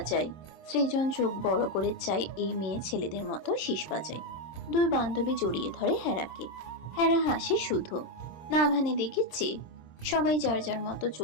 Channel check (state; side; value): late; right; 26 ms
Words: সৃজন চোখ বড় করে চায় এই মেয়ে ছেলেদের মতো শীষ বাজায়। দুই বান্ধবী জড়িয়ে ধরে হেরাকে। হেরা হাসে শুধু। নাভানে দেখেছি সবাই যার যার মতো